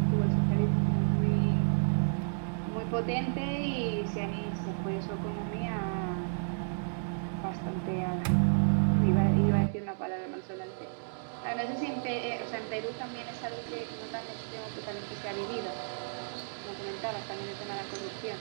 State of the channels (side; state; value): left; silent; digital silence